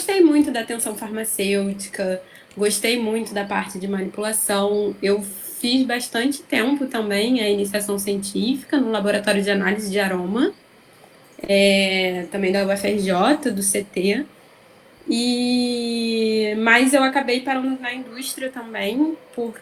muito da atenção farmacêutica, gostei muito da parte de manipulação. Eu fiz bastante tempo também a iniciação científica no laboratório de análise de aroma, também da UFRJ, do CT. Mas eu acabei parando na indústria também,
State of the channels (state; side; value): identical; both; correlation 1.00